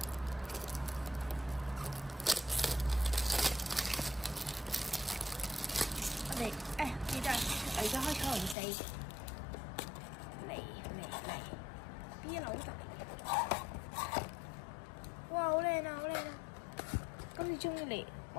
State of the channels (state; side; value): drops out; right; at 8.6 s